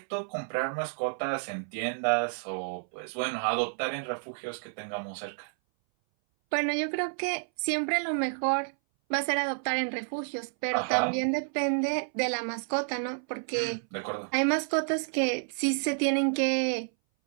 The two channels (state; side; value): silent; left; 58 dB below the other